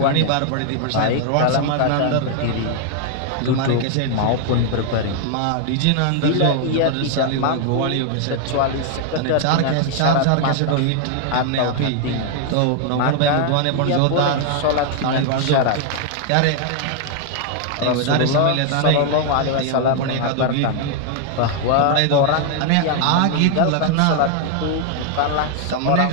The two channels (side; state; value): both; different; correlation 0.00